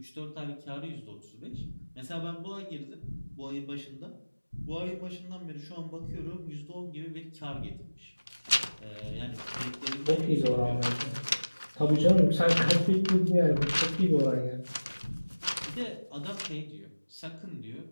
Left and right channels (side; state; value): both; inverted; correlation -1.00